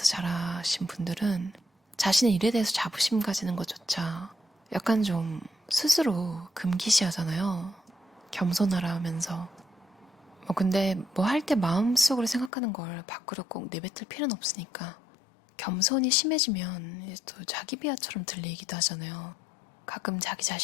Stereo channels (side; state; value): right; drops out; at 12.5 s